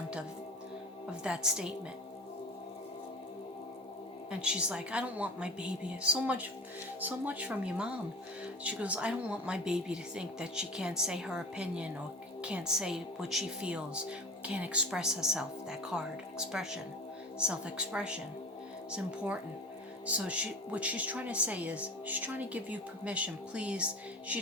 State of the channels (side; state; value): both; normal; correlation 0.36